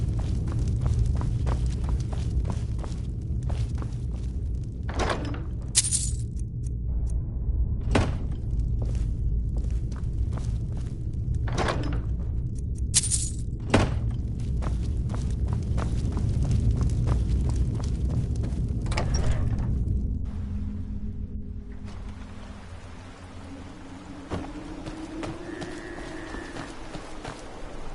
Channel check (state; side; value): identical; both; correlation 1.00